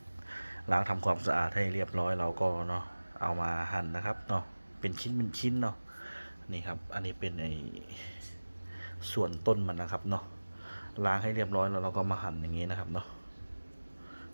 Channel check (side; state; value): both; inverted; correlation -1.00